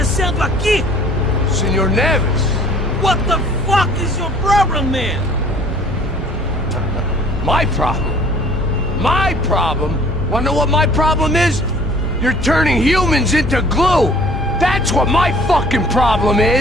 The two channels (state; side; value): normal; both; correlation 0.52